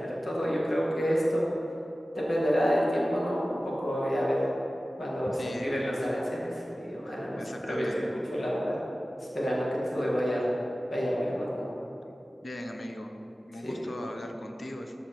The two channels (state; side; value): normal; both; correlation 0.96